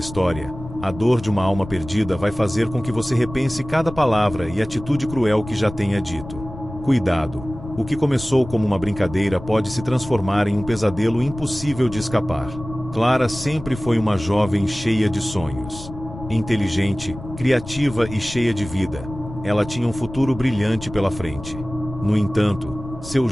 a dor de uma alma perdida vai fazer com que você repense cada palavra e atitude cruel que já tenha dito. Cuidado! O que começou como uma brincadeira pode se transformar em um pesadelo impossível de escapar. Clara sempre foi uma jovem cheia de sonhos. Inteligente, criativa e cheia de vida, ela tinha um futuro brilhante pela frente. No entanto, seu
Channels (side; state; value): left; noise; rumble, 13 dB below the sound